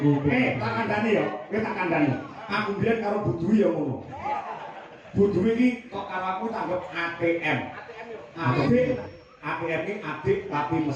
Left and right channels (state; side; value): identical; both; correlation 1.00